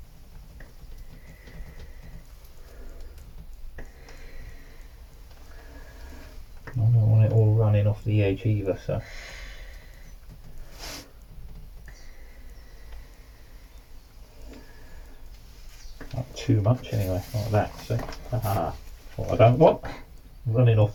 I don't want it all running off the edge either, so not too much anyway, like that. So what I don't want, running off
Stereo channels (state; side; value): identical; both; correlation 1.00